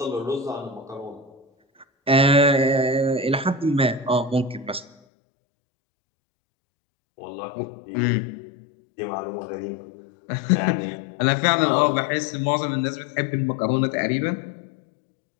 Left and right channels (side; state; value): right; drops out; at 4.9 s